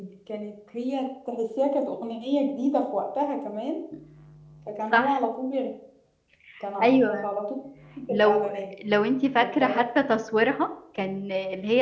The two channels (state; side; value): identical; both; correlation 1.00